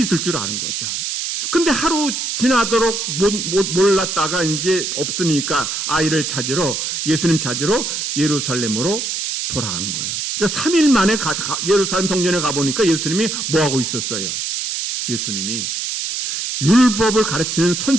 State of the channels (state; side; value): noise; right; hiss, 3 dB below the sound